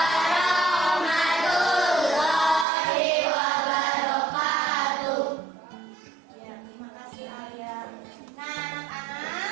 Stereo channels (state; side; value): drops out; left; at 2.7 s